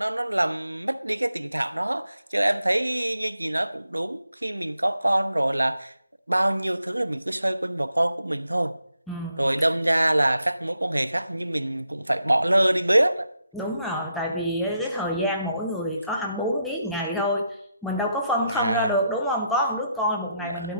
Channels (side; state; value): both; inverted; correlation -0.80